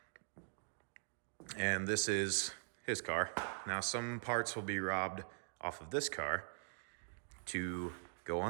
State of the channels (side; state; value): left; silent; digital silence